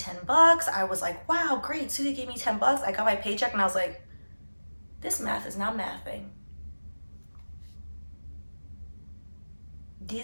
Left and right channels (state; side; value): inverted; both; correlation -1.00